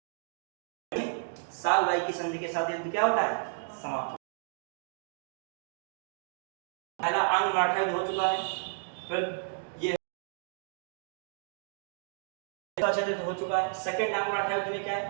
सालबाई की संधि के साथ युद्ध क्या होता है, समाप्त। पहला आंग्ल मराठा युद्ध हो चुका है, फिर ये हो चुका है। सेकंड आंग्ल मराठा युद्ध में क्या है,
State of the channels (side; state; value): left; silent; digital silence